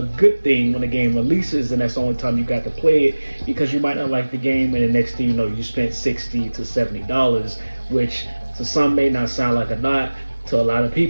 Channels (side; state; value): both; inverted; correlation -1.00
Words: good thing when a game releases and that's the only time you got to play it, because you might not like the game and the next thing you know you spent $60 to $70, which to some may not sound like a lot. To a lot of